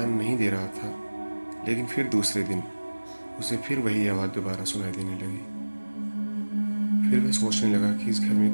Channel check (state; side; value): inverted; both; correlation -1.00